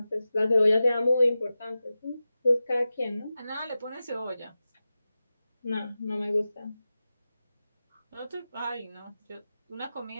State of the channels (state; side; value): inverted; both; correlation -0.94